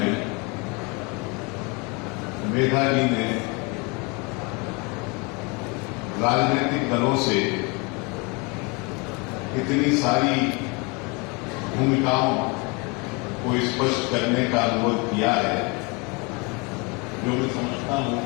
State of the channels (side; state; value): right; quieter; 29.5 dB